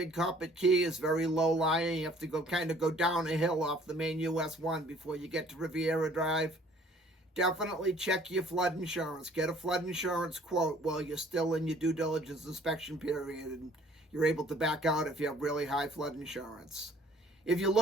Coppet Key is very low lying. You have to go down a hill off the main US 1 before you get to Riviera Drive. Definitely check your flood insurance. Get a flood insurance quote while you're still in your due diligence inspection period, and you're able to back out if you have really high flood insurance. If you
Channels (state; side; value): normal; both; correlation 0.56